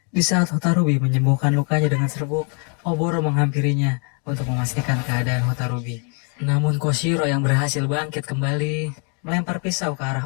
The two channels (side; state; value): right; quieter; 38.2 dB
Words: Di saat Hotarubi menyembuhkan lukanya dengan serbuk, Oboro menghampirinya untuk memastikan keadaan Hotarubi. Namun Koshiro yang berhasil bangkit kembali melempar pisau ke